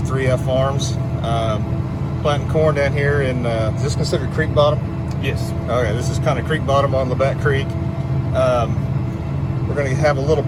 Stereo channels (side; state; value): both; identical; correlation 1.00